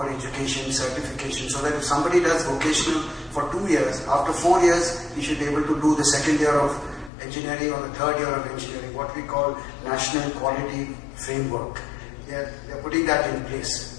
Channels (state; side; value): drops out; right; at 7.1 s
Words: education, certification, so that if somebody does vocational for 2 years, after 4 years, he should be able to do the second year of engineering or the third year of engineering, what we call National Quality Framework. They're putting that in